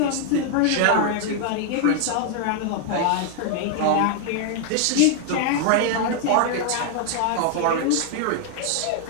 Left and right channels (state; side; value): different; both; correlation 0.00